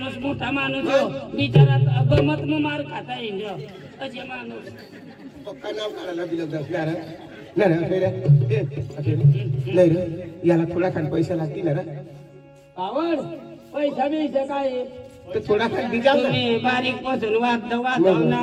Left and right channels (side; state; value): both; identical; correlation 1.00